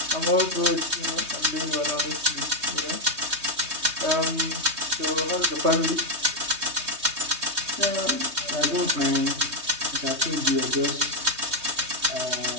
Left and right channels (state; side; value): late; left; 3.2 ms